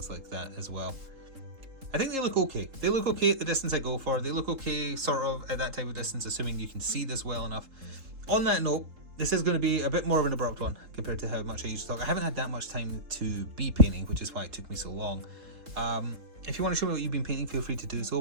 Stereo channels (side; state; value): left; late; 3.7 ms